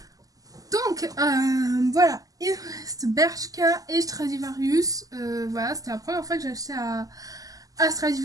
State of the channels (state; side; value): late; left; 0.17 ms